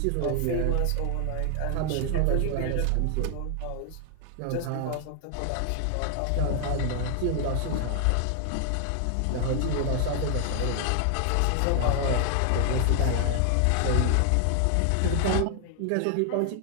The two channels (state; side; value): different; both; correlation 0.00